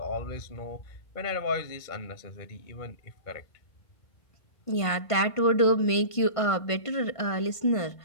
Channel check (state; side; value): late; right; 1.5 ms